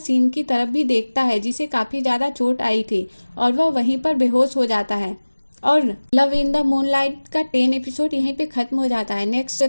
की तरफ भी देखता है जिसे काफ़ी ज़्यादा चोट आई थी और वह वहीं पर बेहोश हो जाता है। और लव इन द मूनलाइट का 10 एपिसोड यहीं पे ख़त्म हो जाता है। नेक्स्ट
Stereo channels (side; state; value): both; inverted; correlation -1.00